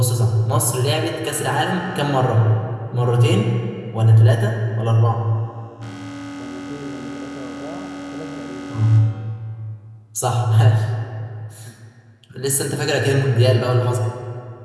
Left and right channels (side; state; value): both; identical; correlation 1.00